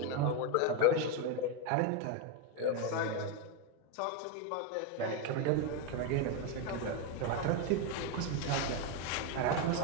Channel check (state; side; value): different; both; correlation 0.02